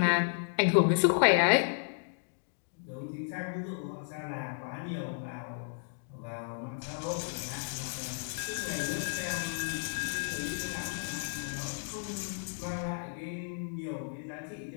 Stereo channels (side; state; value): right; silent; digital silence